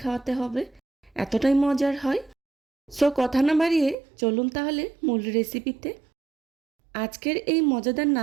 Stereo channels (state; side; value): drops out; left; at 4.0 s